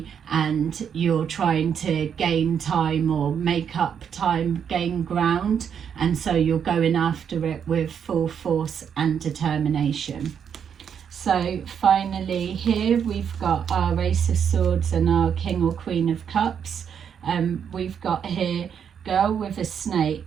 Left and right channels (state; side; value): quieter; left; 7.8 dB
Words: and you're trying to gain time or make up time, gain ground, and so you're going after it with full force and determination. So finally here we've got our Ace of Swords and our King or Queen of Cups. We've got here girl with a